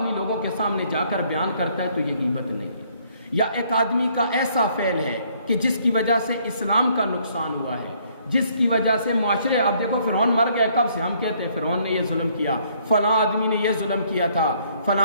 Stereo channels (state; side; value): inverted; both; correlation -0.65